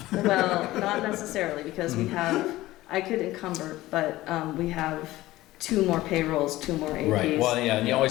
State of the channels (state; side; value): quieter; right; 17.0 dB